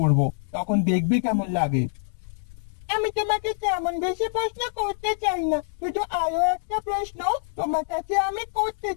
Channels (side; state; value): right; silent; digital silence